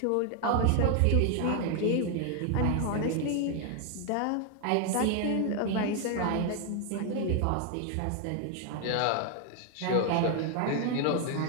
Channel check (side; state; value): both; different; correlation 0.01